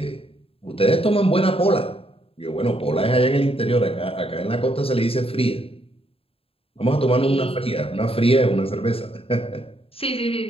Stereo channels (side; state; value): right; late; 0.27 ms